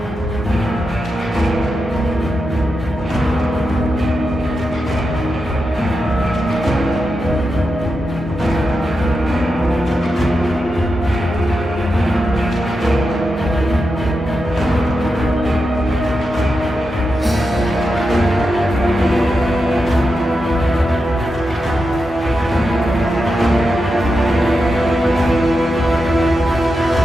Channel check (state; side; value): normal; both; correlation 0.88